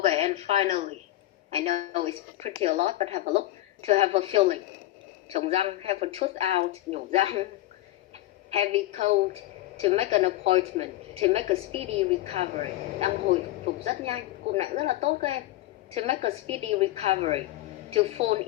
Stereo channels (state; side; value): quieter; right; 15.7 dB